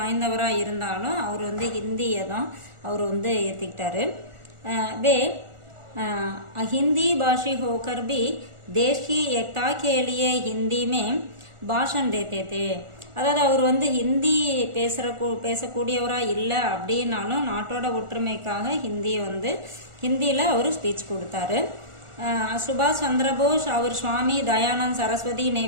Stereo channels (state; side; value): late; left; 1.4 ms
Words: இருந்தாலும் அவர் வந்து ஹிந்தியை தான் அவர் வந்து ஏற்றுக்கிட்டாரு. வே हिंदी भाषी होकर भी देश की एकता के लिए हिंदी में भाषण देते थे. அதாவது அவர் வந்து ஹிந்தி பேசக்கூடியவராக இல்லை அப்படின்னாலும் நாட்டோட ஒற்றுமைக்காக ஹிந்தியில் அவர் ஸ்பீச் கொடுத்தாரு. சுபாஷ் சந்திர போஸ் அவர் சுவாமி தயானந்த் சரஸ்வதி ने